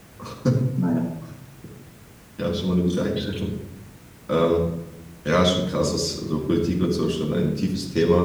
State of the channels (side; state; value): both; identical; correlation 1.00